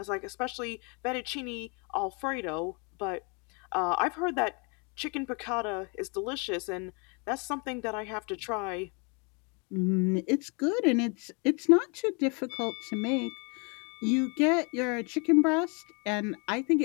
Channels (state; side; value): quieter; right; 33.5 dB